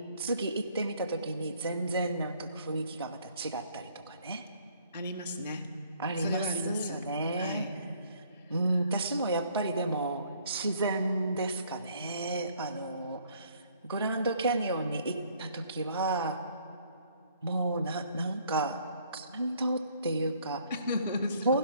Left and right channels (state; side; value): inverted; both; correlation -0.62